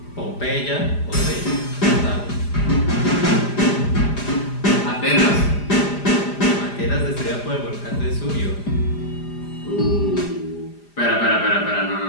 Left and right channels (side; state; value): right; late; 4.9 ms